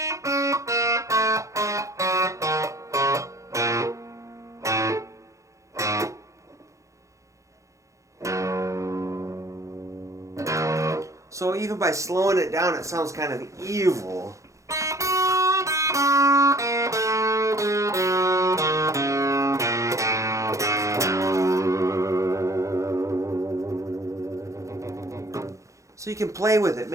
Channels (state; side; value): late; left; 0.15 ms